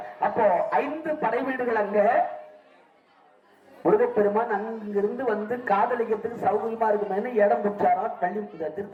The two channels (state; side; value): identical; both; correlation 1.00